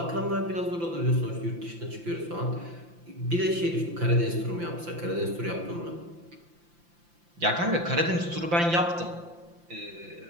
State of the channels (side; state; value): left; late; 5.8 ms